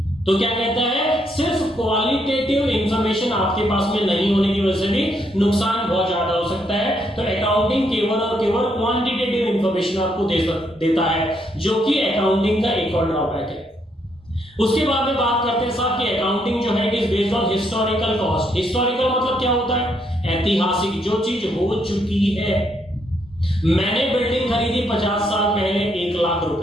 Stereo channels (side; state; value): both; normal; correlation 0.74